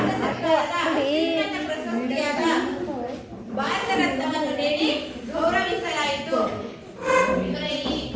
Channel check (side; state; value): both; identical; correlation 1.00